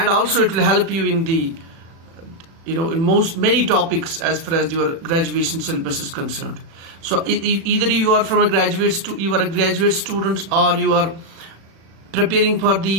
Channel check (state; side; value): late; left; 36 ms